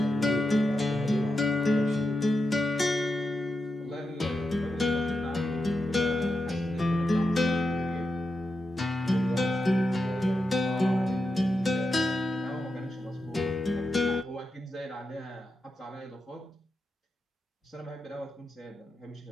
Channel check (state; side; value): normal; both; correlation 0.88